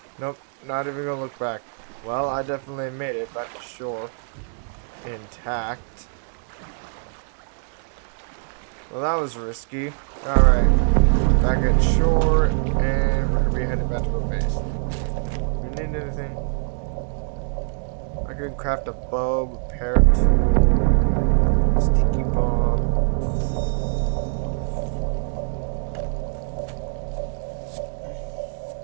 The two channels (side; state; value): left; silent; digital silence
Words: Nope, not even gonna look back. Well, I definitely made it back to shore. Intact. Well, that was risky. Alright, back at shore, and we're gonna be heading back to our base. We need anything? I could craft a bow, repair tool, sticky bomb.